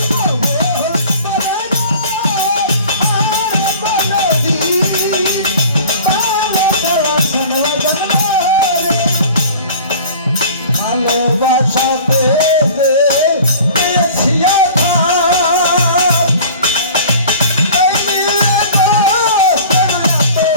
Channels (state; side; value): inverted; both; correlation -0.44